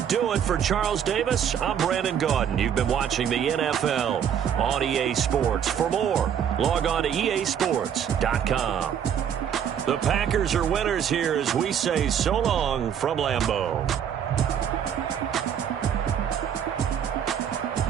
do it for Charles Davis. I'm Brandon Gaudin. You've been watching the NFL on EA Sports. For more, log on to easports.com. The Packers are winners here as we say so long from Lambeau.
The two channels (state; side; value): quieter; left; 8.7 dB